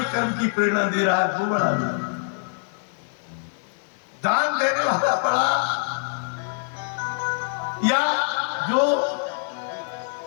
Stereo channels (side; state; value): right; silent; digital silence